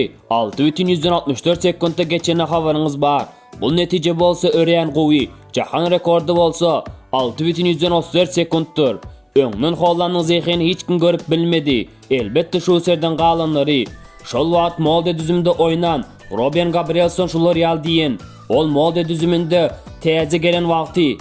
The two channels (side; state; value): both; identical; correlation 1.00